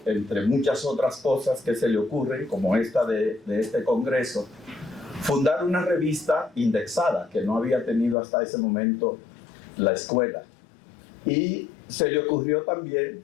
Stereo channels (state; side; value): drops out; right; at 8.2 s